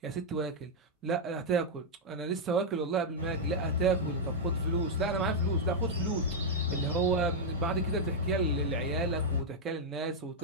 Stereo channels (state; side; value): normal; both; correlation -0.03